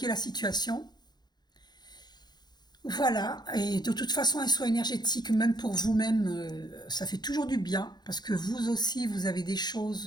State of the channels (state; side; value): late; right; 0.20 ms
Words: la situation. Voilà, et de toute façon, un soin énergétique, même pour vous-même, ça fait toujours du bien, parce que vous aussi, vous avez des